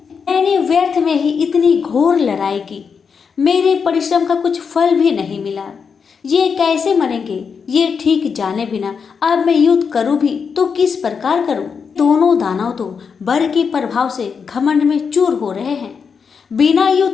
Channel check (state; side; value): quieter; right; 6.0 dB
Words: मैंने व्यर्थ में ही इतनी घोर लड़ाई की, मेरे परिश्रम का कुछ फल भी नहीं मिला। ये कैसे मरेंगे, ये ठीक जाने बिना अब मैं युद्ध करूं भी तो किस प्रकार करूं। दोनों दानव तो बर के प्रभाव से घमंड में चूर हो रहे हैं। बिना